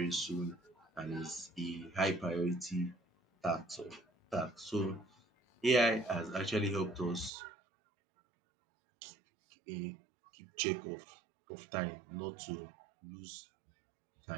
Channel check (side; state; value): left; drops out; at 7.3 s